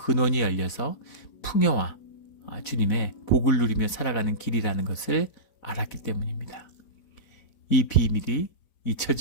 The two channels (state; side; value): late; right; 4.1 ms